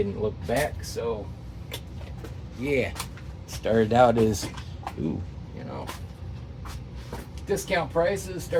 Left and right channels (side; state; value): both; identical; correlation 1.00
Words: look back. So yeah, started out as discount prices.